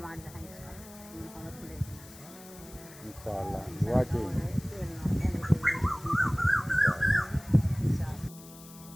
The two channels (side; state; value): left; noise; hiss, 19 dB below the sound